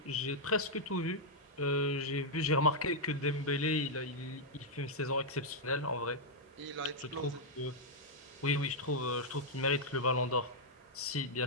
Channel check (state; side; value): normal; both; correlation -0.05